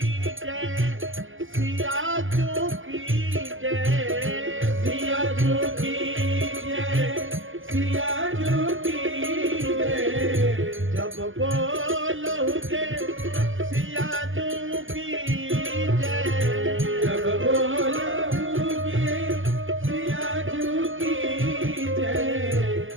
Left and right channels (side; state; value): left; late; 0.58 ms